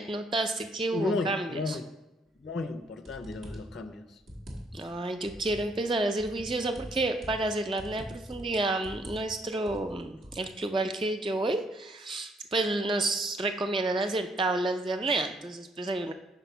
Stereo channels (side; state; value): both; normal; correlation 0.69